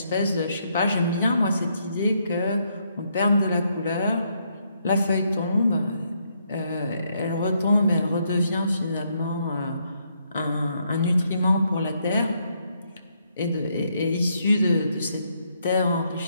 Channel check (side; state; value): both; inverted; correlation -0.75